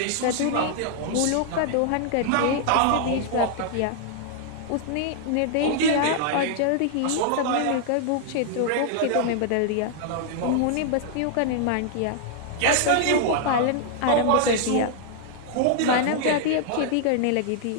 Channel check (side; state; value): both; different; correlation -0.01